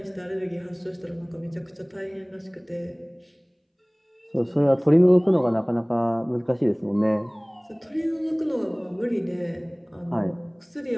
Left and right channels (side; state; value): both; identical; correlation 1.00